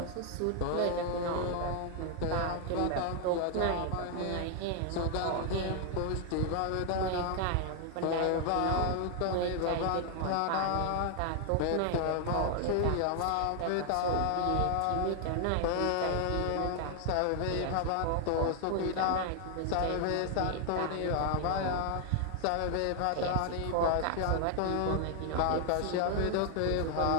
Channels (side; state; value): both; different; correlation 0.00